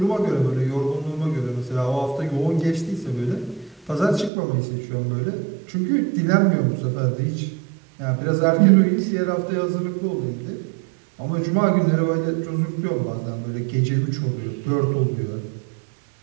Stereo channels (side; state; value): left; drops out; at 4.3 s